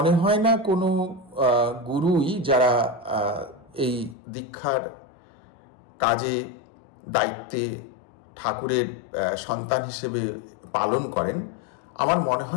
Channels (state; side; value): drops out; right; at 4.2 s